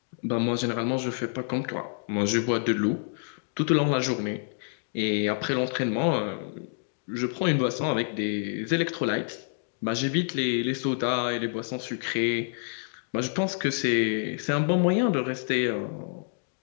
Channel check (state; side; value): silent; right; digital silence